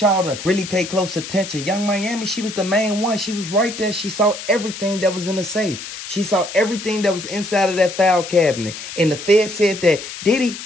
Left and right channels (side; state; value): left; noise; hiss, 10 dB below the sound